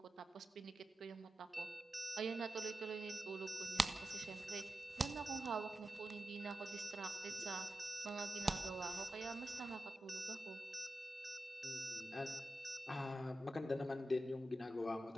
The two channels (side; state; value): both; normal; correlation 0.92